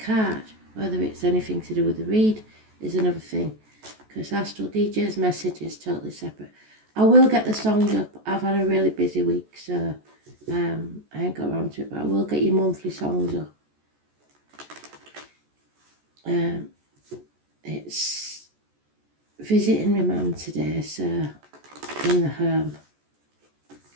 Whether it's anything to do with the read is another thing, because Astral DJ's message is totally separate. I will get the songs up. I've had a really busy week, so I ain't got around to it, but I will get your monthly songs up. It's visiting my mum today, so in the home.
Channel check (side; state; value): left; late; 14 ms